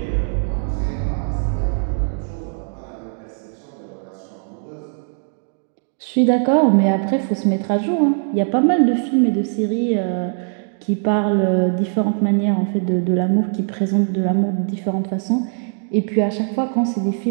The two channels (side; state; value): left; silent; 65 dB below the other